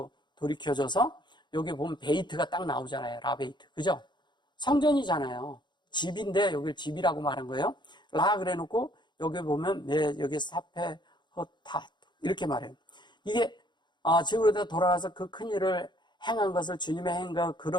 돌이켜져서, 여기 보면 베이트가 딱 나오잖아요. 라베이트. 그죠? 성전이잖아요. 집인데 여기를 집이라고 말한 거예요. 라 그래 놓고 여기 보면 여기 사페 허타 이렇게 말해요. 이게 지구로 돌아와서 그 큰 일을 행한 것을 주님의 행과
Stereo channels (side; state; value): right; late; 0.22 ms